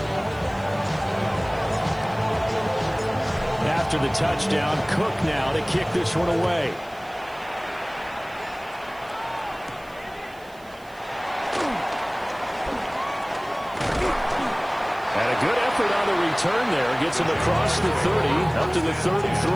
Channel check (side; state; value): right; noise; hiss, 26 dB below the sound